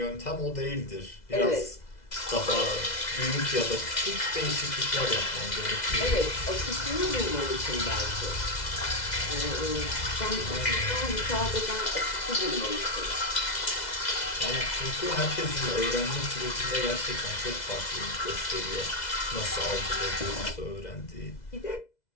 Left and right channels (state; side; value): late; right; 2.0 ms